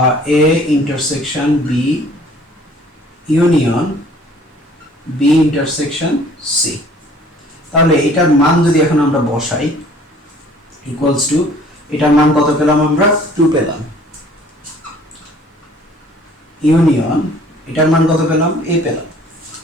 a intersection b union b intersection c। তাহলে এটার মান যদি এখন আমরা বসাই ইকুয়ালস টু, এটার মান কত পেলাম আমরা? 2 পেলাম। ইউনিয়ন এটার মান কত পেলাম? a পেলাম।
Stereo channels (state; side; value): normal; both; correlation 0.54